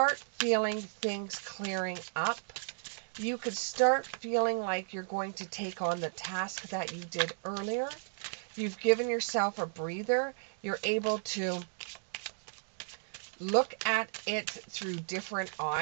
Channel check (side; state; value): left; silent; digital silence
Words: feeling things clearing up. You could start feeling like you're going to take on the task that you did earlier. You've given yourself a breather. You're able to look at it through different